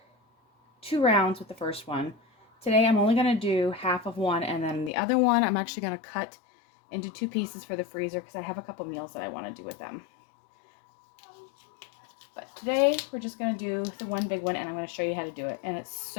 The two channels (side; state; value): right; drops out; at 4.9 s